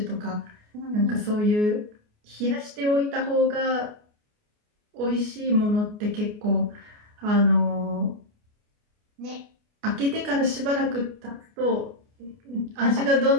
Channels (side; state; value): left; late; 29 ms